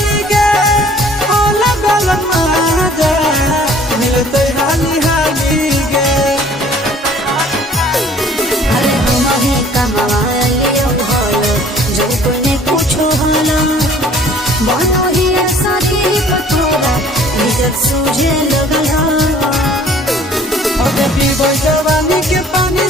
सूझे लगला जवानी के पानी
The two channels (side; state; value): both; normal; correlation 0.53